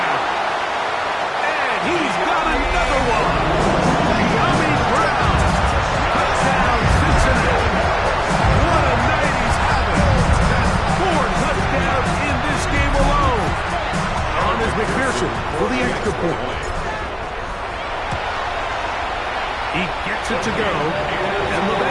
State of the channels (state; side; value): identical; both; correlation 1.00